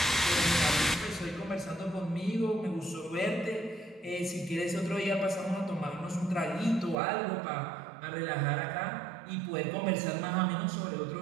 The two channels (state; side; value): drops out; left; at 7.0 s